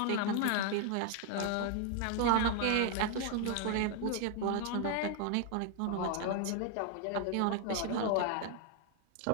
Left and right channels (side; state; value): both; different; correlation 0.00